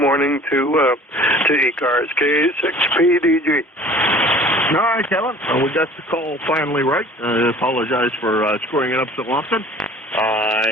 to ECARS, KA6PDG. All right, Kevin. We got the call finally right. I apologize for screwing it up so often.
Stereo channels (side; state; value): both; normal; correlation 0.47